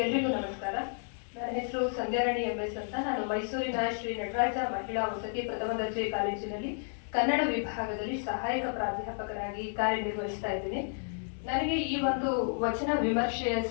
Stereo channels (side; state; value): right; silent; digital silence